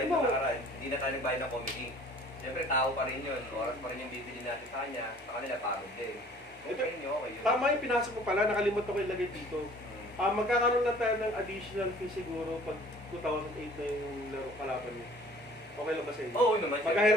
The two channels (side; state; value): both; normal; correlation 0.51